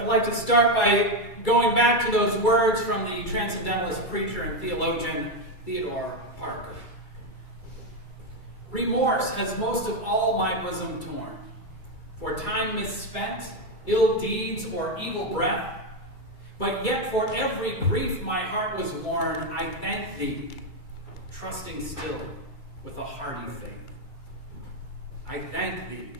I'd like to start by going back to those words from the transcendentalist preacher and theologian Theodore Parker. Remorse has most of all my bosom torn, for time misspent, ill deeds, or evil breath. But yet for every grief my heart was worn, I thank thee, trusting still with a hearty faith. I thank thee,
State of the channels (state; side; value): late; right; 2.3 ms